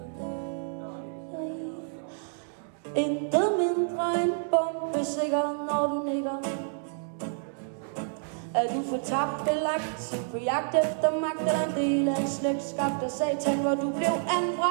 Intet mindre end bombesikker, når du nikker. Er du fortabt belagt på jagt efter magt, eller en del af en slægtskab af satan, hvor du blev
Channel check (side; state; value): left; silent; digital silence